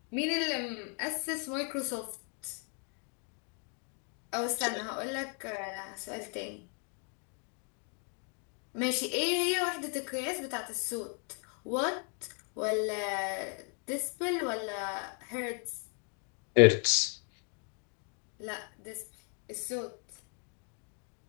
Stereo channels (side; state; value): right; quieter; 38.5 dB